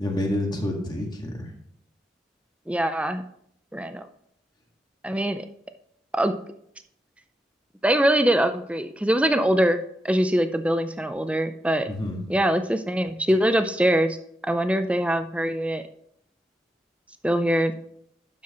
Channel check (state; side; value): normal; both; correlation 0.85